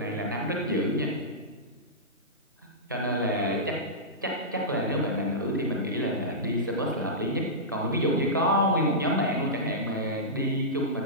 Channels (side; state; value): both; normal; correlation -0.15